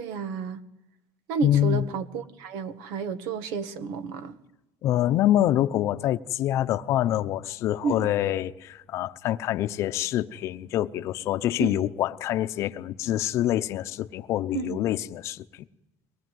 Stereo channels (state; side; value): quieter; right; 8.3 dB